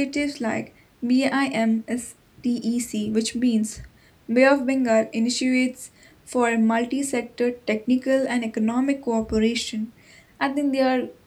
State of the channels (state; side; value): identical; both; correlation 1.00